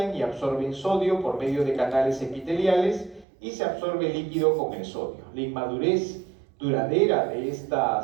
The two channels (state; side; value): drops out; left; at 3.2 s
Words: y absorben sodio por medio de canales epiteliales y se absorbe líquido con el sodio. La inmadurez duradera de